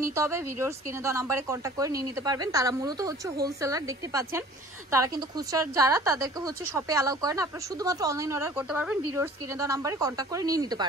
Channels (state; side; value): normal; both; correlation 0.49